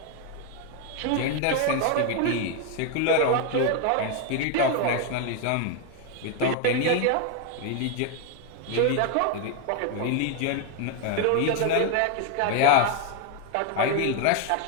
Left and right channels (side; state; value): both; different; correlation 0.01